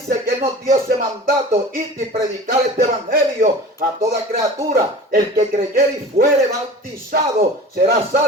que Él nos dio ese mandato, ir y predicar este evangelio a toda criatura. El que creyere y fuere bautizado será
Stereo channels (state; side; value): normal; both; correlation 0.38